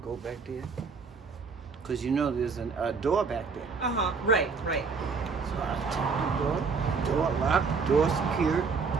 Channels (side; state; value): left; quieter; 5.0 dB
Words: go back there. Because there's a door back there. Right. So I checked the door locked, door secured.